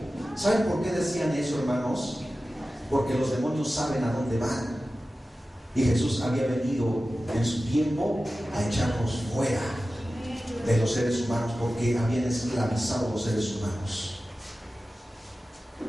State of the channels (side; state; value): both; normal; correlation 0.95